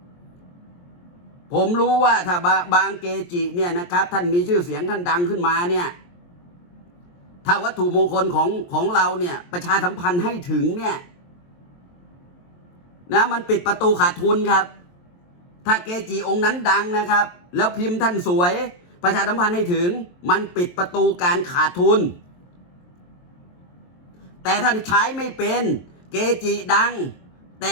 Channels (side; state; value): right; late; 23 ms